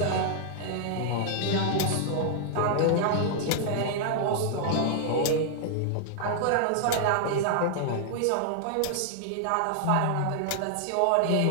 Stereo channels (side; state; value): both; different; correlation -0.01